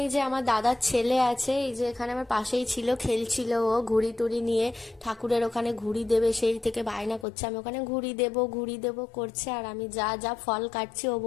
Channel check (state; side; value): drops out; right; at 7.2 s